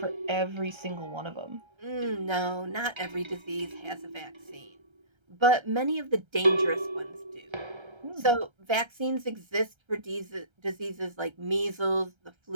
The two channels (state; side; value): late; left; 1.3 ms